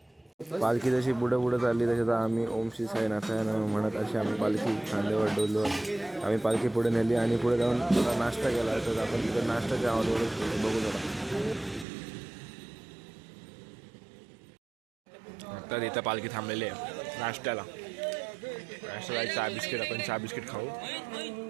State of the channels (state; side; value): drops out; left; at 11.9 s